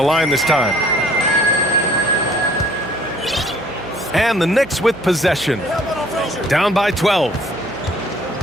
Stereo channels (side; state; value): right; noise; hum, 20 dB below the sound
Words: line this time. And the Knicks with possession. Down by 12.